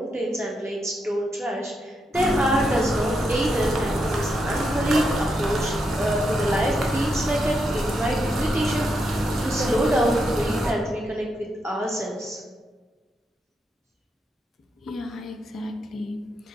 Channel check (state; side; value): normal; both; correlation 0.82